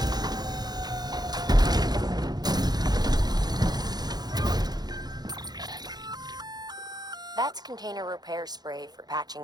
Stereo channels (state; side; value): late; left; 0.19 ms